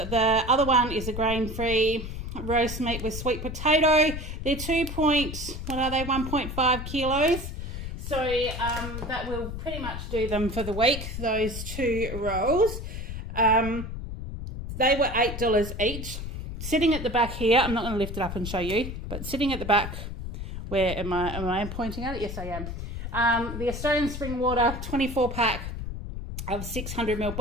other one is a grain-free roast meat with sweet potato. They're 1.5 kilos. So that will pretty much do them for the week, those two rolls. They were $8 each. Sitting at the back here, I'm not going to lift it up and show you, but sitting at the back, where am I pointing at it? Yes, I am. The Australian Spring Water 24 pack of 600ml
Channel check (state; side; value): noise; left; rumble, 7 dB below the sound